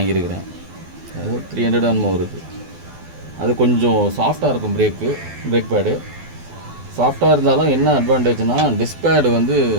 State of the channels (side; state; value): left; late; 12 ms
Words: அது 300 என்னமோ வருது. அது கொஞ்சம் சாஃப்டாக இருக்கும். பிரேக் பேடு சாஃப்டாக இருந்தாலும் என்ன அட்வான்டேஜ்னால் டிஸ்க் பேடு வந்து